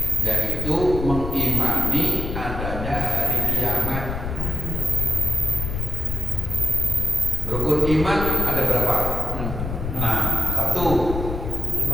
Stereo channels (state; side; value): noise; left; rumble, 4 dB below the sound